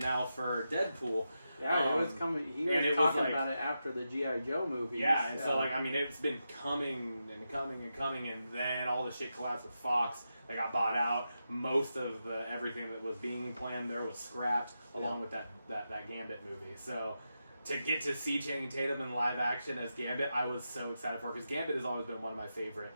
for Deadpool. Yeah, it was coming. He was talking about it after the G.I. Joe movie. Yeah, and so it's been coming and coming and coming, and then all the shit collapsed with Fox. They got bought out. Most of everything that was being planned there was scrapped, along with that Gambit movie. So to get to see Channing Tatum in live action as Gambit, I was so excited for, because Gambit has always been one of my favorite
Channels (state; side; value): inverted; both; correlation -0.88